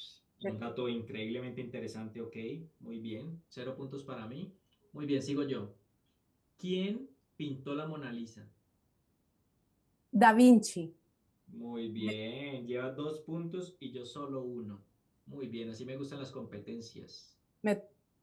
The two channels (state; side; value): identical; both; correlation 1.00